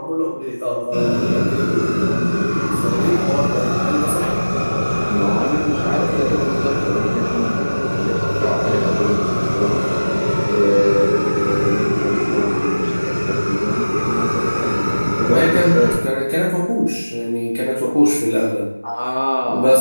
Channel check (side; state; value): both; inverted; correlation -1.00